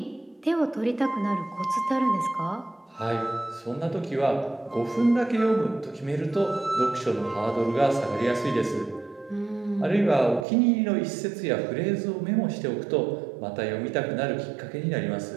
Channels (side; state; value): left; drops out; at 10.5 s